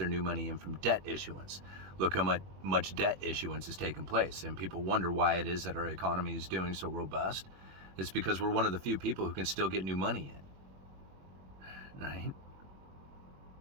new money in from debt issuance. Look how much debt issuance has taken place. And people wonder why it is that our economy is doing so robust. It's because we're one of the few people who can still get new money in. Right?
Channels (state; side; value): late; left; 21 ms